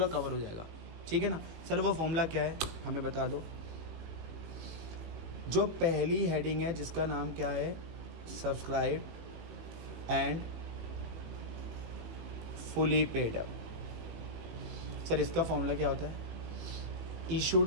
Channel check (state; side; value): late; left; 18 ms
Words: कवर हो जाएगा, ठीक है ना। सर वो फॉर्मूला क्या है हमें बता दो। जो पहली हेडिंग है जिसका नाम क्या है, subscribe and fully paid up. Sir इसका फॉर्मूला क्या होता है,